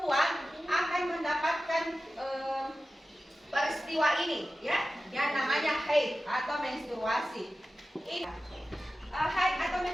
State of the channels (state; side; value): normal; both; correlation 0.94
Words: akan mendapatkan peristiwa ini ya yang namanya haid atau menstruasi. Ini haid atau